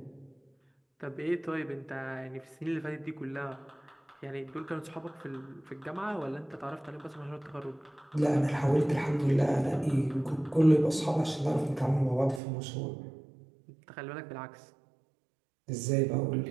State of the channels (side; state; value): left; drops out; at 12.4 s